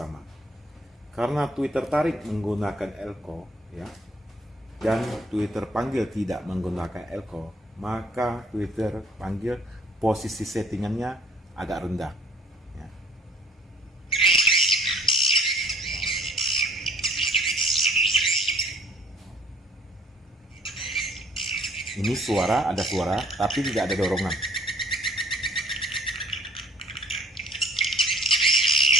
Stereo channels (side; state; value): both; normal; correlation 0.57